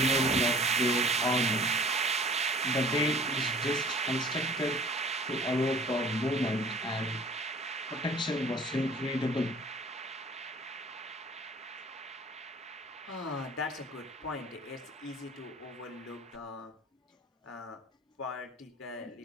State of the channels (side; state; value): both; normal; correlation 0.49